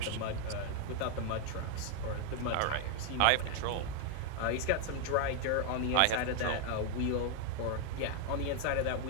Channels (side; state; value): both; different; correlation 0.00